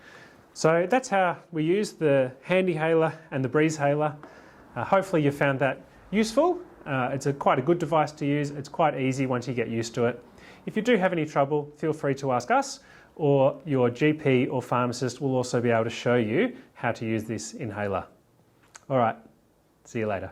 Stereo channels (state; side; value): identical; both; correlation 1.00